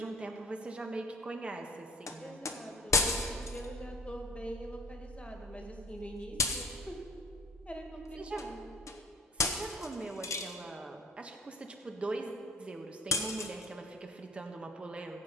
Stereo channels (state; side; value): normal; both; correlation 0.44